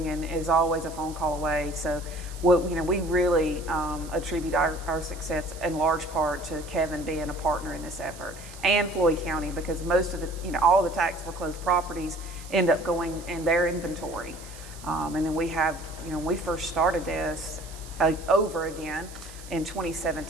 and is always a phone call away. So, we really attribute our success in large part to Kevin being a partner in this effort, and Floyd County, because most of all the tax foreclosed properties end up going in their inventory. And then we have, when we first started this over again, in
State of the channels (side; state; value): right; noise; hiss, 18 dB below the sound